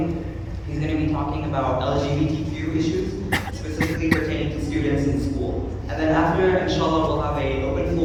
He's going to be talking about LGBTQ issues, specifically pertaining to students in school. And then after, inshallah, we'll have an open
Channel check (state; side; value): identical; both; correlation 1.00